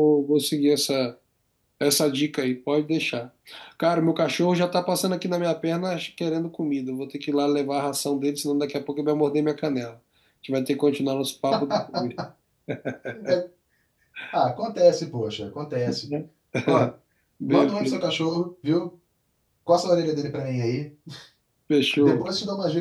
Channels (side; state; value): both; identical; correlation 1.00